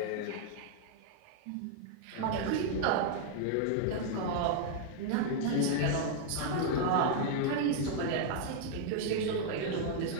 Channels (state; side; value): different; both; correlation 0.00